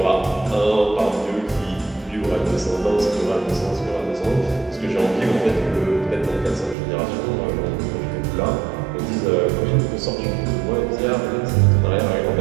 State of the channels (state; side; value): drops out; left; at 6.8 s